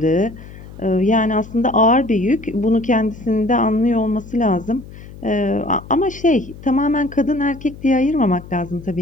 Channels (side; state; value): left; noise; hum, 16 dB below the sound